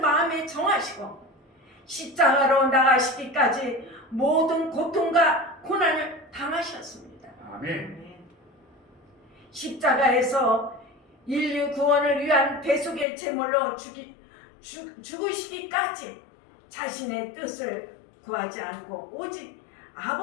마음에 정하시고 십자가로 나가시기까지 모든 고통과 고난을 당하셨습니다. 아멘. 십자가에서 인류 구원을 위한 대속의 제물로 죽으시기까지 자신의 뜻을 구하지 않고 오직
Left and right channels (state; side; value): drops out; right; at 13.1 s